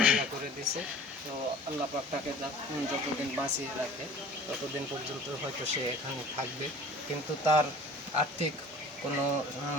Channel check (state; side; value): normal; both; correlation 0.45